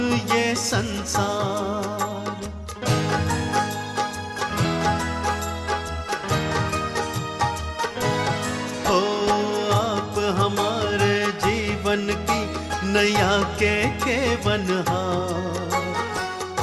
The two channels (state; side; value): identical; both; correlation 1.00